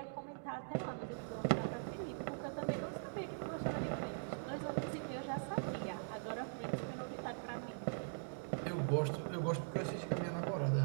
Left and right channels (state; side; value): silent; left; digital silence